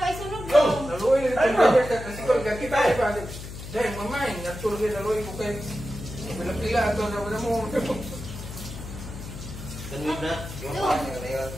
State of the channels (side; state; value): left; noise; hum, 11 dB below the sound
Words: isunog do. Naluoy ni kasi ko kita ay pa. Dai mamay, natul gi naluoy ko kay. Pila ato na mo. Kanina na.